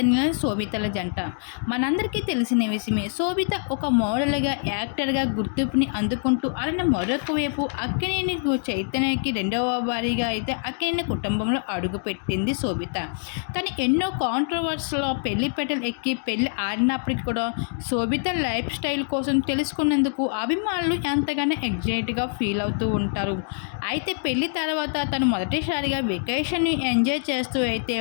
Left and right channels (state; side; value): silent; right; digital silence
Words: శోభితల జంట. మనందరికీ తెలిసిన విషయమే. శోభిత ఒక మోడల్‌గా, యాక్టర్‌గా గుర్తింపుని అందుకుంటూ అలానే మరొక వైపు అక్కినేని చైతన్యకి రెండవ భార్యగా అయితే అక్కినేని కుటుంబంలో అడుగుపెట్టింది శోభిత. తను ఎన్నో కాంట్రోవర్సీ‌లో పెళ్లి పీటలు ఎక్కి పెళ్లి ఆడినప్పటికి కూడా శోభిత లైఫ్ స్టైల్ కోసం తెలుసుకున్నందుకు అభిమానులు ఎంతగానో ఎక్సైట్‌గా ఫీల్ అవుతూ ఉంటారు. అయితే పెళ్లి తర్వాత తను మొదటిసారిగా వెకేషన్‌ని ఎంజాయ్ చేస్తూ అయితే